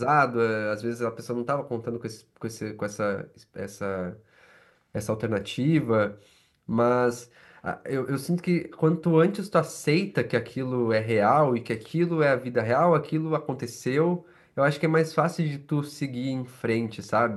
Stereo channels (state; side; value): identical; both; correlation 1.00